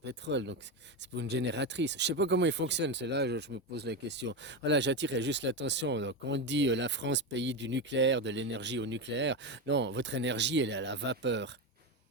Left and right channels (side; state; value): both; normal; correlation 0.15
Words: donc c'est pour une génératrice. Je sais pas comment ils fonctionnent, c'est là je me pose la question. Voilà, j'attirais juste l'attention. Donc, quand on dit la France, pays du nucléaire, de l'énergie au nucléaire, non, votre énergie, elle est à la vapeur.